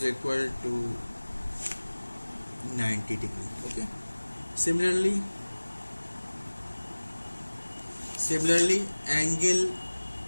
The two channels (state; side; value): inverted; both; correlation -1.00